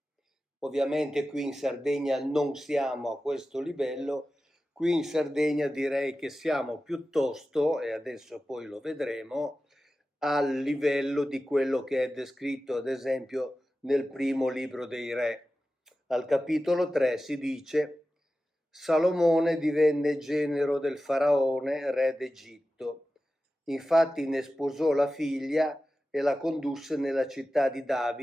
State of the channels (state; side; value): normal; both; correlation 0.94